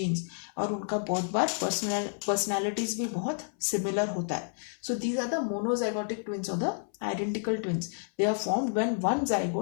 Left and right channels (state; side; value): silent; right; 58 dB below the other